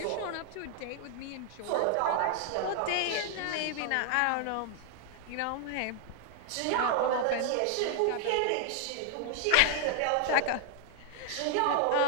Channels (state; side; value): different; both; correlation 0.00